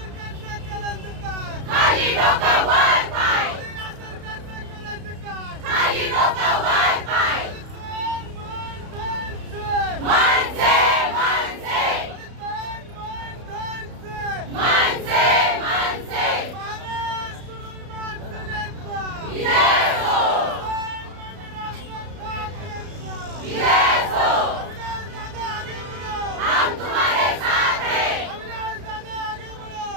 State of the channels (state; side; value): late; left; 32 ms